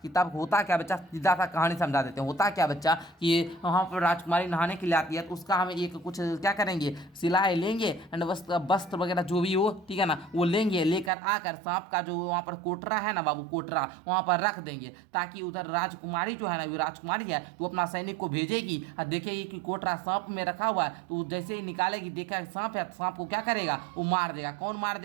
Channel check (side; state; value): left; drops out; at 11.1 s